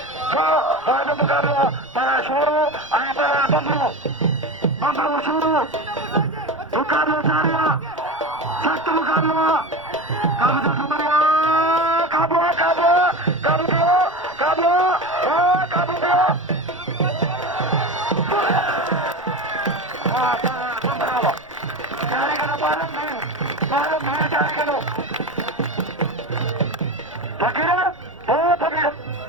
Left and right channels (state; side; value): noise; left; rumble, 30 dB below the sound